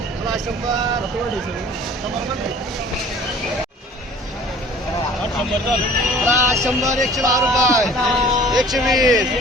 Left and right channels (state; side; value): normal; both; correlation 0.49